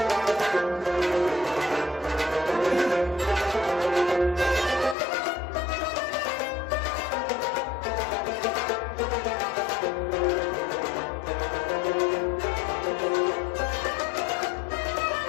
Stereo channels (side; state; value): right; drops out; at 5.0 s